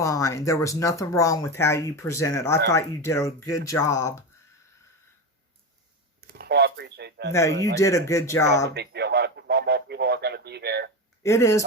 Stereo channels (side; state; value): both; normal; correlation 0.19